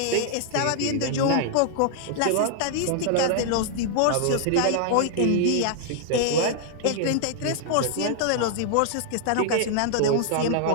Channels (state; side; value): different; both; correlation -0.01